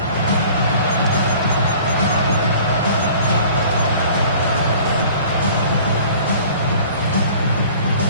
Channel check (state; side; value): inverted; both; correlation -0.48